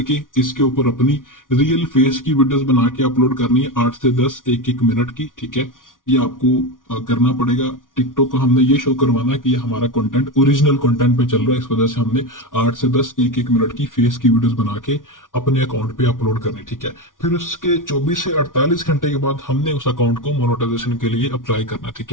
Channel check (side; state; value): right; late; 0.89 ms